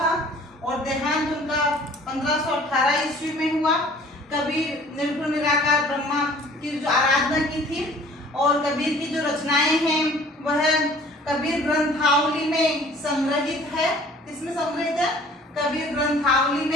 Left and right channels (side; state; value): both; normal; correlation 0.51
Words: और देहांत उनका 1518 ईस्वी में हुआ। कबीर निर्गुण निराकार ब्रह्मा की जो आराधना की थी और कबीर की जो रचनाएं हैं वह कबीर ग्रंथावली में संग्रहित है। किसमें संग्रहित है? कबीर ग्रंथावली